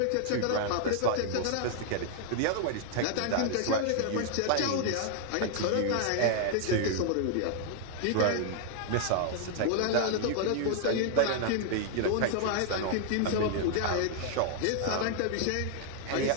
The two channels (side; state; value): both; different; correlation 0.00